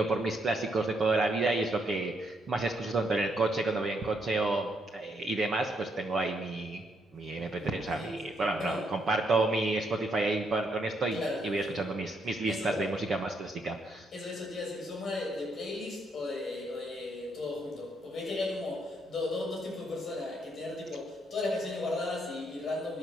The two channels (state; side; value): normal; both; correlation 0.75